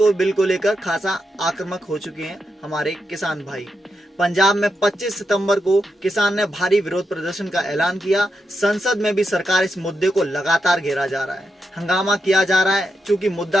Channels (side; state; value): both; normal; correlation 0.85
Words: बिल को लेकर खासा आक्रामक हो चुके हैं हमारे किसान भाई। पंजाब में 25 सितंबर को किसान ने भारी विरोध प्रदर्शन का ऐलान किया। संसद में भी सरकार इस मुद्दे को लगातार घेरा जा रहा है, हंगामा किया जा रहा है। चूंकि